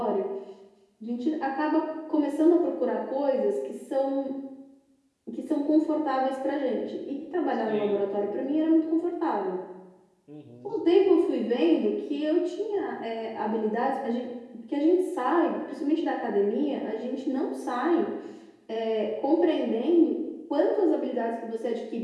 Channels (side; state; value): both; identical; correlation 1.00